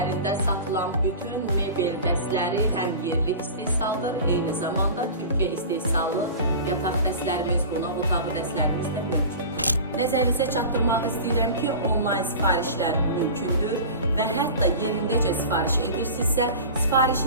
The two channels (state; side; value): inverted; both; correlation -0.35